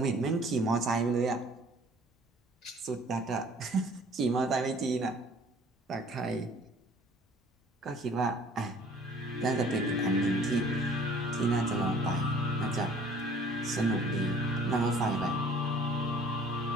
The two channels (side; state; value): both; normal; correlation 0.53